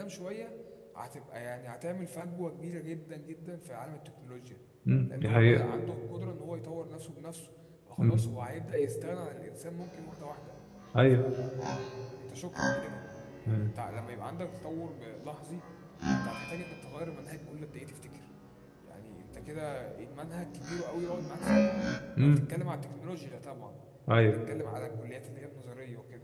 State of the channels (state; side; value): identical; both; correlation 1.00